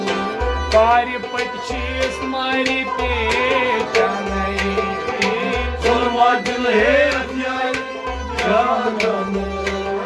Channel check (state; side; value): identical; both; correlation 1.00